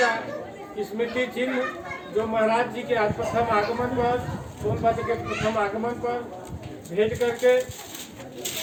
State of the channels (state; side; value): identical; both; correlation 1.00